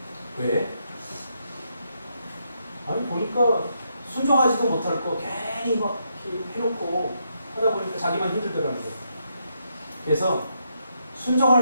왜? 아니 보니까 순종하지도 못할 거 괜히 막 해놓고 하다 보니까 자기만 힘들더라고요. 그래서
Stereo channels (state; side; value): inverted; both; correlation -0.79